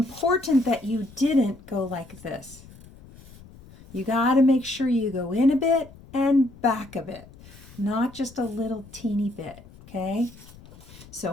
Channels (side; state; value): left; noise; rumble, 21 dB below the sound